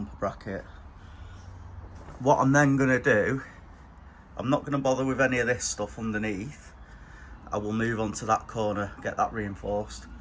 bracket. What I'm then going to do, I'm not going to bother with any of this stuff underneath. I will move on to that corner, get that reinforced.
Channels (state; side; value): identical; both; correlation 1.00